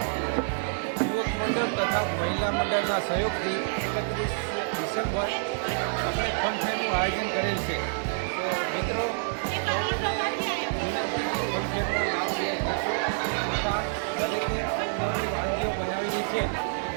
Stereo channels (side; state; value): left; silent; 60 dB below the other